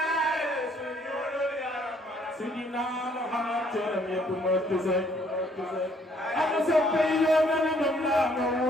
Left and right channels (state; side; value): normal; both; correlation 0.64